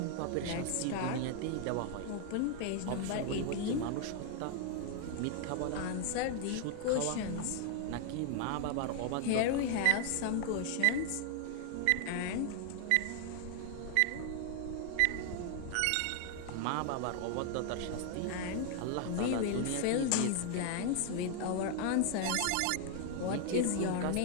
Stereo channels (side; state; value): both; different; correlation 0.00